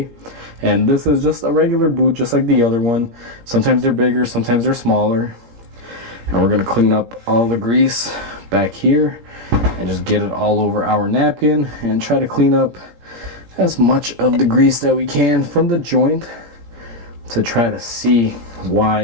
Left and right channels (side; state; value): left; late; 17 ms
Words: And this is just a regular boot, just like the other one. Sometimes they're bigger, sometimes they're smaller. And we're going to clean up all the grease back here and just get it all over our napkin and try to clean up as much of the grease that we can from the joint to try to see